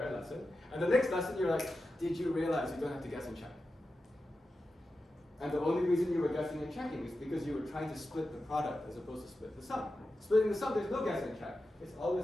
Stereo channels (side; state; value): both; normal; correlation 0.91